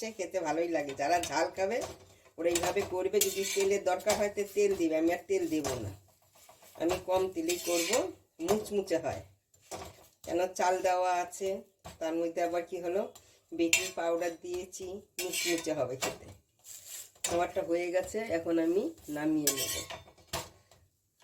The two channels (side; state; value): both; identical; correlation 1.00